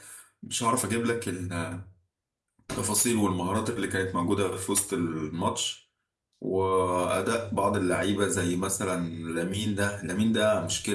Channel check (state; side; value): identical; both; correlation 1.00